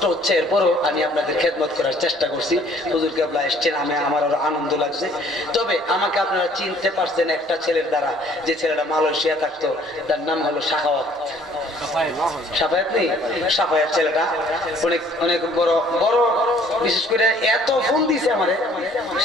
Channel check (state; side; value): normal; both; correlation 0.58